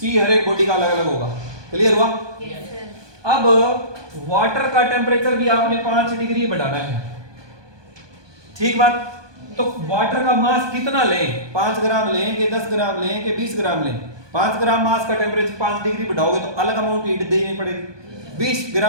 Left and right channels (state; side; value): late; left; 1.2 ms